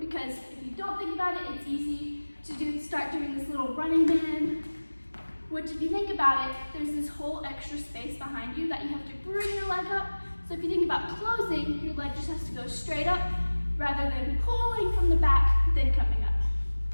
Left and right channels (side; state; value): both; inverted; correlation -1.00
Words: because if you don't think about it, it's easy to start doing this little running man, which if you think about it, there's this whole extra space behind you that you have to bring your leg up. So if you think about closing, your leg just has to go straight up rather than pulling from the back, then coming up.